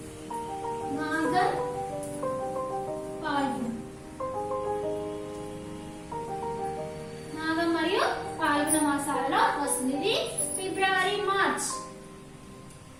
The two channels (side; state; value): both; identical; correlation 1.00